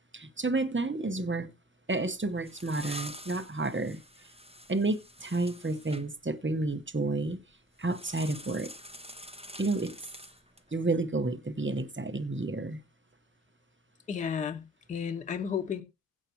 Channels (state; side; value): normal; both; correlation 0.54